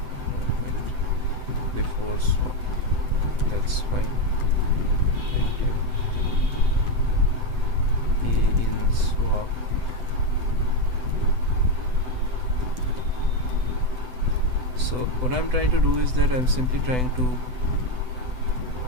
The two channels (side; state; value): left; late; 7.9 ms